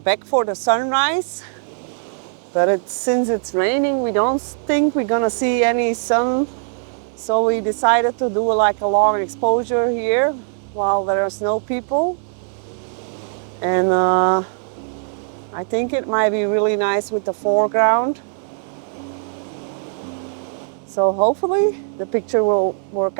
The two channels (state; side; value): silent; left; 66 dB below the other